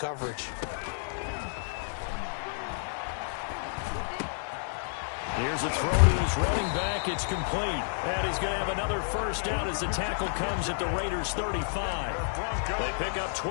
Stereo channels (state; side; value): silent; right; digital silence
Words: Here's a throw to his running back. It's complete. And he's going to have another first down as the tackle comes at the Raiders' 35. They pick up